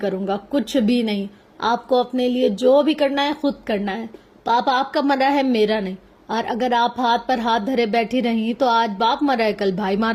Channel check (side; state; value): both; identical; correlation 1.00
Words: گا، کچھ بھی نہیں۔ آپ کو اپنے لیے جو بھی کرنا ہے خود کرنا ہے۔ پاپا آپ کا مرا ہے، میرا نہیں۔ اور اگر آپ ہاتھ پر ہاتھ دھرے بیٹھی رہی تو آج باپ مرا ہے، کل بھائی